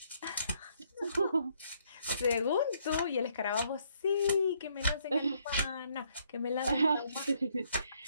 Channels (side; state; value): both; inverted; correlation -0.69